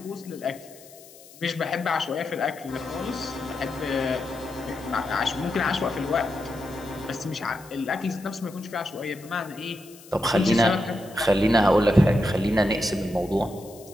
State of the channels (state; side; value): noise; left; hiss, 21 dB below the sound